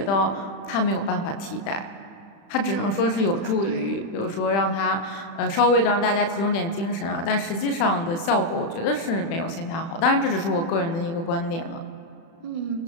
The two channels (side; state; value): right; late; 36 ms